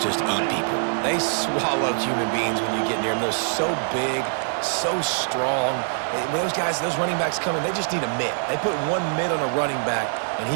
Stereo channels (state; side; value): silent; left; 60 dB below the other